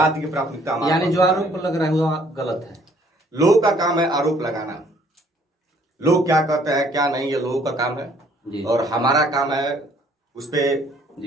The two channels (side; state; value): both; normal; correlation 0.61